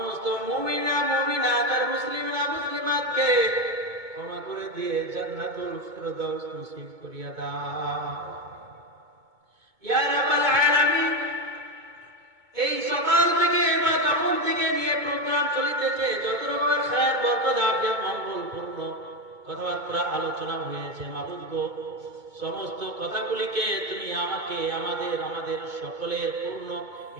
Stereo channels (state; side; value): late; left; 2.2 ms